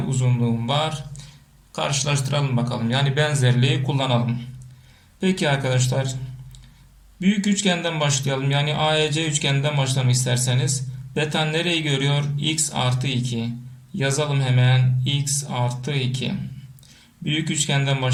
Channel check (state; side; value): identical; both; correlation 1.00